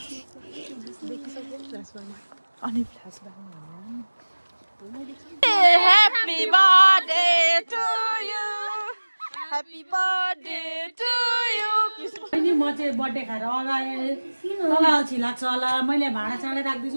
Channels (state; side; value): inverted; both; correlation -1.00